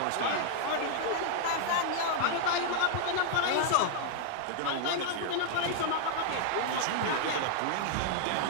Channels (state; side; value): different; both; correlation -0.01